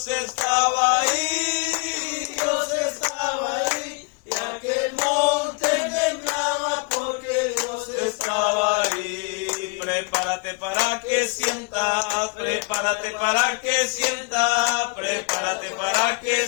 estaba ahí, Dios estaba ahí, y aquel monte temblaba porque Dios estaba ahí. Prepárate para que sientas, prepárate para que sientas, prepárate para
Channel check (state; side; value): quieter; right; 31.7 dB